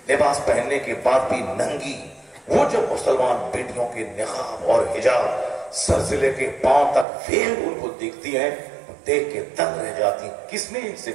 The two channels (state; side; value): drops out; left; at 7.1 s